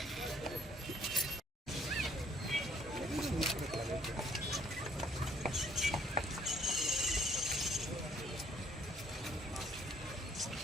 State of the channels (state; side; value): normal; both; correlation 0.61